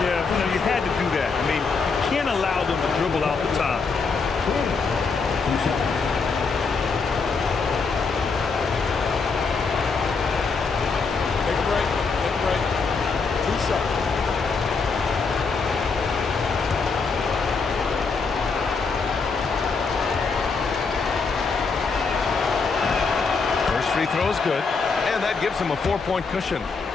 Yeah, you had to do that. I mean, you can't allow them to dribble out the time. Take a break. Take a break. 2 shots. First free throw is good. And that gives him a 4-point cushion.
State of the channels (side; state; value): right; quieter; 4.8 dB